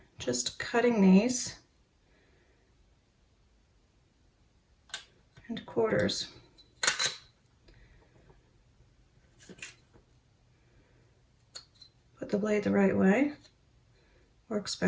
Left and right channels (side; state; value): both; identical; correlation 1.00